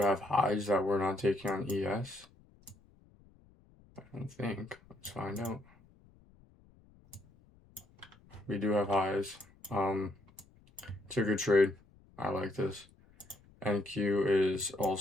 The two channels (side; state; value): left; noise; rumble, 28 dB below the sound